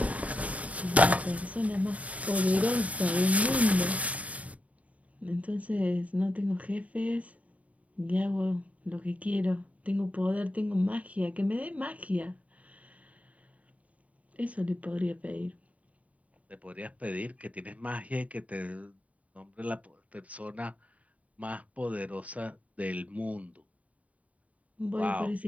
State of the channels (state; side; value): late; left; 0.069 ms